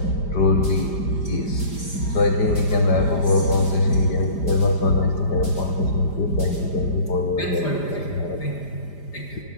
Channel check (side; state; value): right; late; 5.0 ms